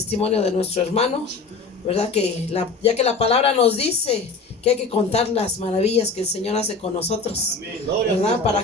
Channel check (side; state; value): right; quieter; 4.2 dB